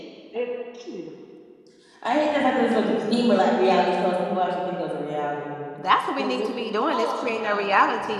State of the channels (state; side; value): identical; both; correlation 1.00